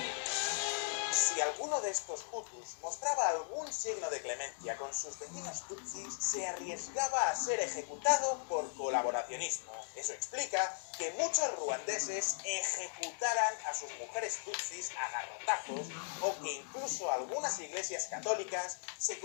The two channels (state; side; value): silent; right; digital silence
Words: Si alguno de estos Hutus mostraba algún signo de clemencia con sus vecinos Tutsis, se arriesgaba a ser ejecutado por colaboracionismo. Eso explica que muchos ruandeses ejecutaran a sus mujeres Tutsis a garrotazos o que incluso algunas iglesias católicas se